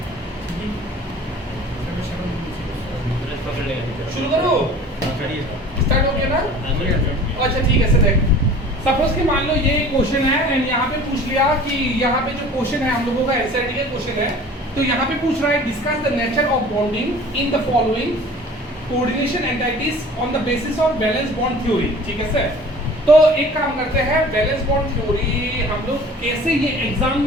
शुरू करो, स्टार्ट हो गया ना? अच्छा ठीक है। देख, सपोज कि मान लो ये क्वेश्चन है एंड यहाँ पे पूछ लिया कि यहाँ पे जो क्वेश्चन है हम लोगों का एसआईटी का क्वेश्चन है, तो यहाँ पे पूछ रहा है discuss the nature of bonding in the following coordination entities on the basis of valence bond theory. ठीक है सर, तो एक काम करते हैं, बैलेंस बॉन्ड थ्योरी हम लोग कैसे, ये एग्जाम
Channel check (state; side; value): normal; both; correlation 0.45